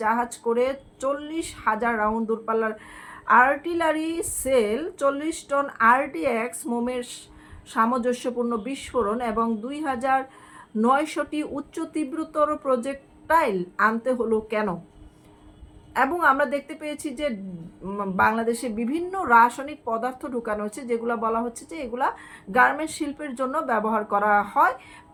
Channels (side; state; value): both; identical; correlation 1.00